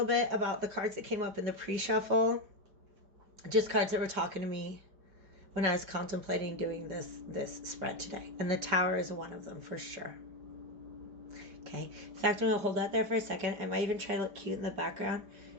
bit about the cards that came up in the pre-shuffle, just cards that were talking to me when I was contemplating doing this spread today. And the Tower is one of them for sure. Okay. In fact, I'm going to hold that there for a second. I might even try to look cute in the background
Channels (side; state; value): left; late; 5.0 ms